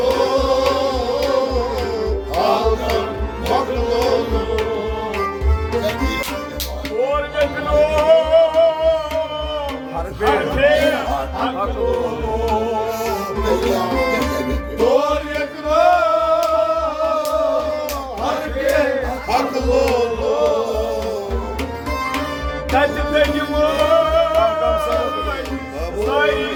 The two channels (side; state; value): both; identical; correlation 1.00